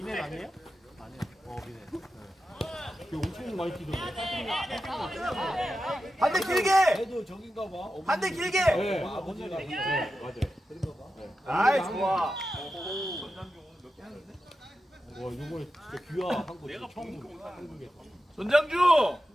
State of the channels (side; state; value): both; normal; correlation 0.91